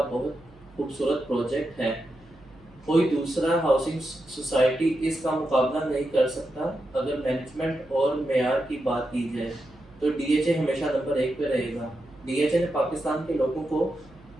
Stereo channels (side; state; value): right; noise; hum, 26 dB below the sound